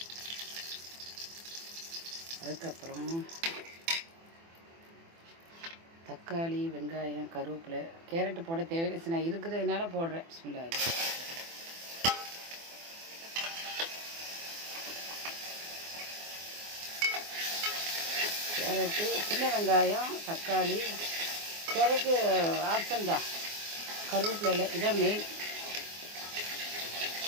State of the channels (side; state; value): left; late; 24 ms